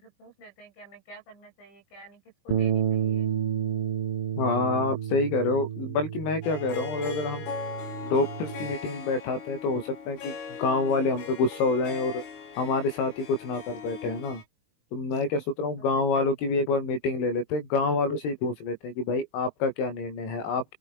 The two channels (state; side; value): late; right; 20 ms